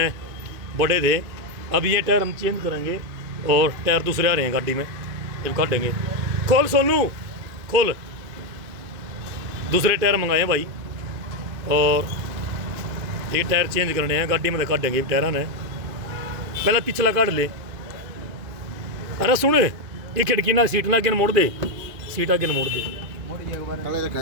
बड़े थे। अब ये टायर हम चेंज करेंगे और टायर दूसरे आ रहे हैं गाड़ी में, जब काटेंगे। खोल सोनू खोल, दूसरे टायर मंगाए हैं भाई और ये टायर चेंज करने हैं गाड़ी में, काटेंगे टायर ने। पहले पिछला काट ले। अरे सुन, ये खिड़की ना सीट ना आगे मोड़ दे, सीट आगे मोड़ दे।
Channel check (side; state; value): left; late; 2.5 ms